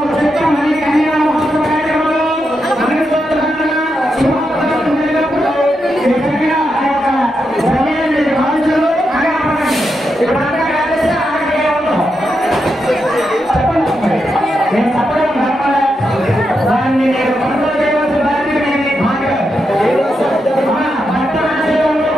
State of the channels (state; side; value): normal; both; correlation 0.85